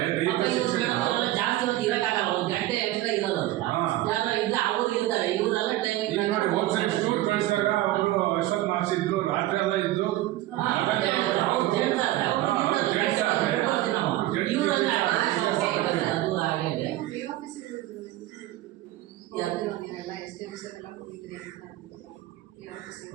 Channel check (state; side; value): quieter; left; 15.8 dB